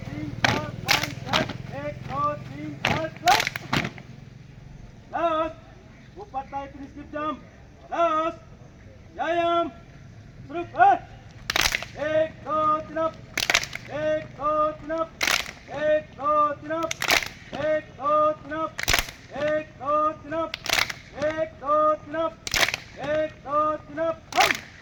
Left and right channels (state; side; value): identical; both; correlation 1.00